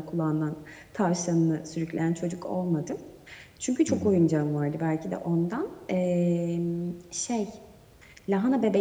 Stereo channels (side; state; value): both; identical; correlation 1.00